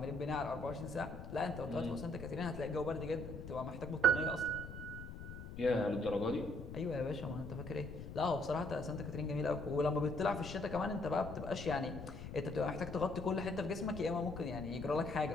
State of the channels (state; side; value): noise; left; rumble, 10 dB below the sound